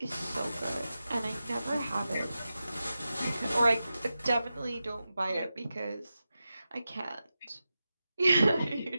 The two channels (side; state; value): both; inverted; correlation -0.92